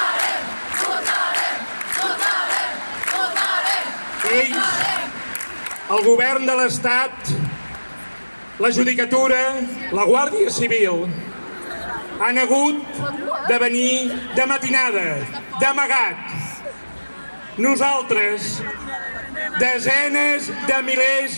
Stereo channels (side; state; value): both; inverted; correlation -1.00